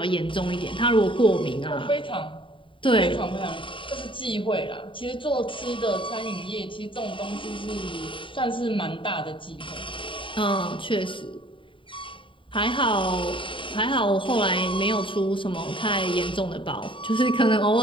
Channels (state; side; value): late; right; 0.25 ms